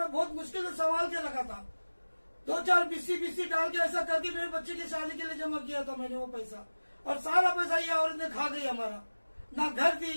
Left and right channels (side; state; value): both; inverted; correlation -1.00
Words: बहुत मुश्किल से संभाल के रखा था, 2-4 बीसी डाल के ऐसा करके मेरे बच्चे की शादी के लिए जमा किया था मैंने वो पैसा, और सारा पैसा ये औरत ने खा गई हमारा, ना घर